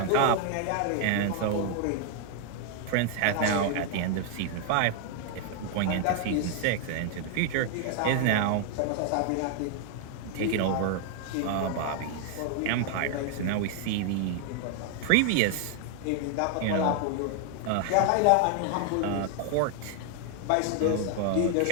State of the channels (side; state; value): both; different; correlation 0.00